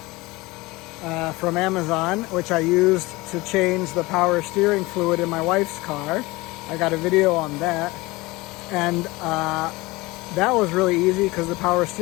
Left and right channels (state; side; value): quieter; right; 21.9 dB